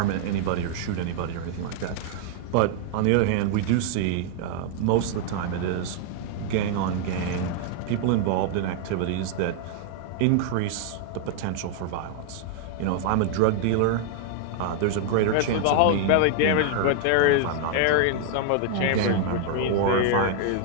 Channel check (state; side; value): different; both; correlation 0.00